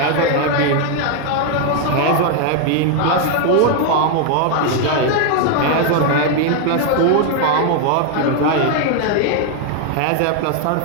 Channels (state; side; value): different; both; correlation 0.00